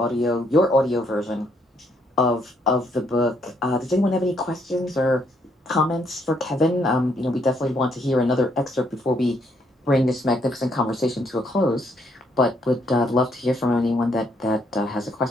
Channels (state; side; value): normal; both; correlation 0.71